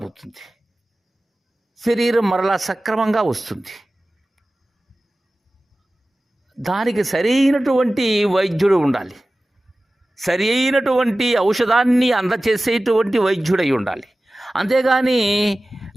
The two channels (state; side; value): normal; both; correlation 0.96